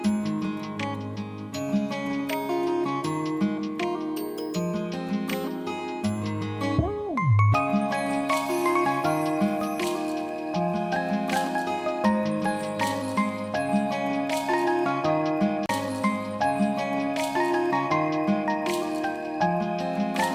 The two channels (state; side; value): identical; both; correlation 1.00